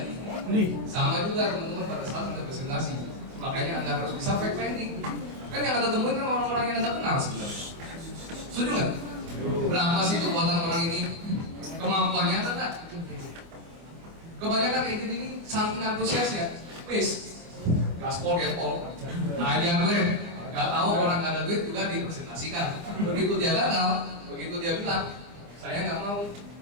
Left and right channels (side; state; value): left; late; 25 ms